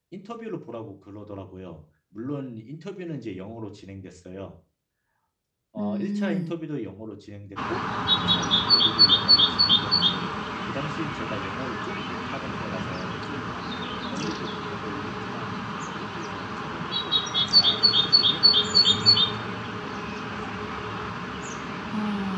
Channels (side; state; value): both; identical; correlation 1.00